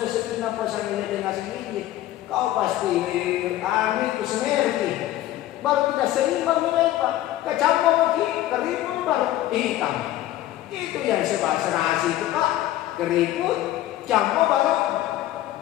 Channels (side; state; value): right; quieter; 14.3 dB